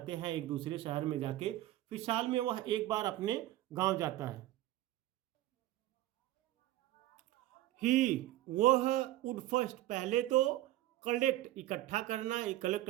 हैं एक दूसरे शहर में जाके, फिर साल में वह एक बार अपने गांव जाता है। ही वह वुड फर्स्ट पहले तो, कलेक्ट इकट्ठा करना, कलेक्ट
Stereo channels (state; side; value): quieter; left; 15.1 dB